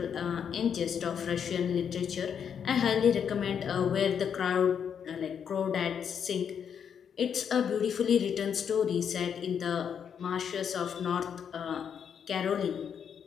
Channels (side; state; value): right; quieter; 7.7 dB